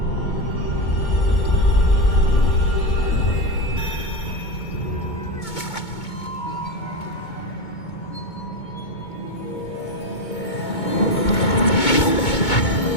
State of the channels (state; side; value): late; right; 2.2 ms